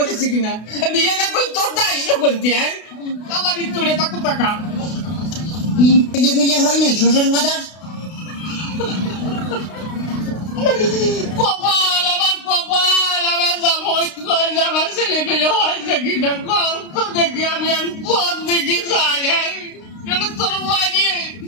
কিনা, বিয়ে না করলে তোর দায়িত্ব করতে হ্যাঁ আমারই তোরে থাকো টাকা বিয়ে বিয়ে হয় নাই শ্বশুর বাজার? কপাল আমার জামাই করে আমার ছেলে পেলে হয়েছে কিনা কত দেখি আমি পথ দেখি যাই তোর বাড়িয়ে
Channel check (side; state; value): right; late; 32 ms